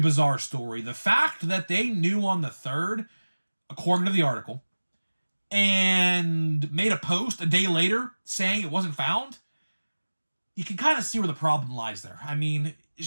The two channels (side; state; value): both; inverted; correlation -1.00